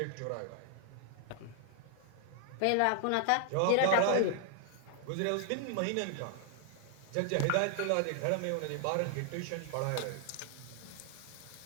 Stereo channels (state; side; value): different; both; correlation 0.00